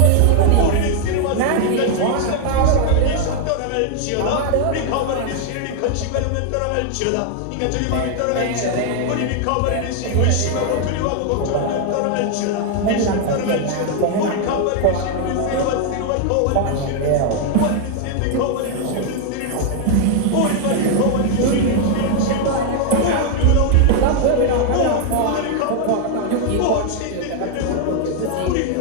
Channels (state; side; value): different; both; correlation 0.00